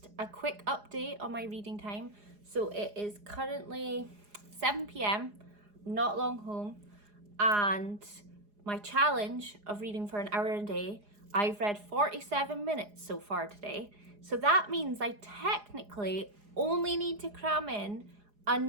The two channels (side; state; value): left; late; 4.8 ms